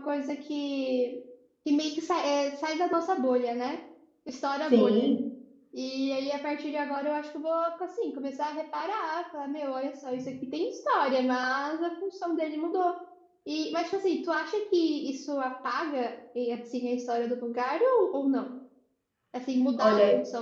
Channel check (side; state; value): both; identical; correlation 1.00